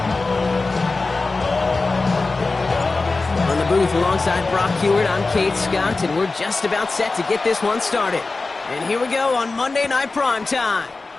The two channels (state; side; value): quieter; right; 3.7 dB